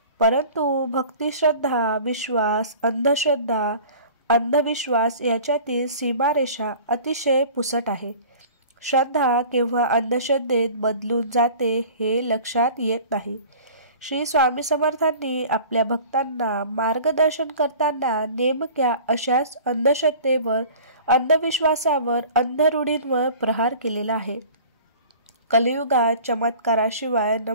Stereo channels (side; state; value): both; inverted; correlation -0.43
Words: परंतु भक्ती, श्रद्धा, विश्वास, अंधश्रद्धा, अंधविश्वास याच्यातील सीमारेषा अतिशय पुसट आहे. श्रद्धा केव्हा अंधश्रद्धेत बदलून जाते हे लक्षात येत नाही. श्री स्वामी समर्थांनी आपल्या भक्तांना मार्गदर्शन करताना नेमक्या अशाच अंधश्रद्धेवर, अंधविश्वासावर, अंधरूढींवर प्रहार केलेला आहे. कलियुगात चमत्काराशिवाय